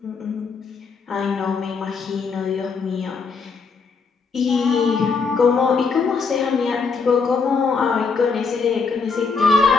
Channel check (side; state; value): right; quieter; 5.0 dB